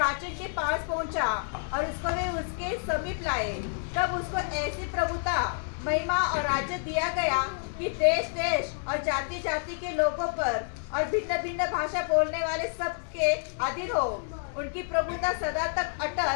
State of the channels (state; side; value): silent; right; digital silence